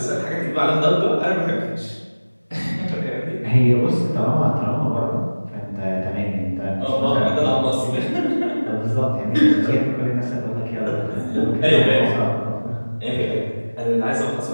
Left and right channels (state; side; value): inverted; both; correlation -1.00